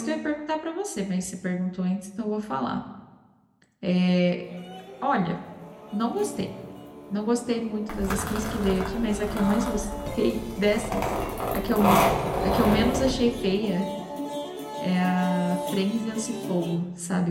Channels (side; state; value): both; identical; correlation 1.00